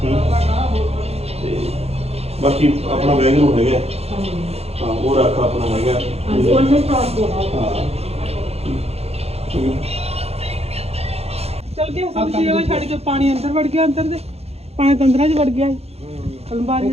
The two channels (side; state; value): left; late; 0.30 ms